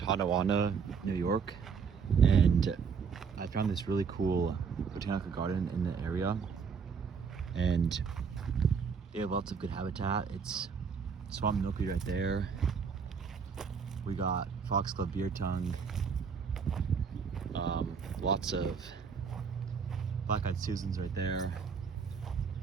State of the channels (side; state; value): left; quieter; 6.0 dB